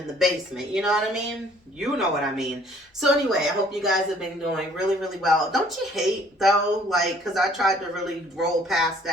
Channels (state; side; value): normal; both; correlation 0.58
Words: the basement. You know what I mean? You know what I mean. So anyway, I hope you guys have been doing really, really well. Don't you hate, though, like, because I tried to really roll past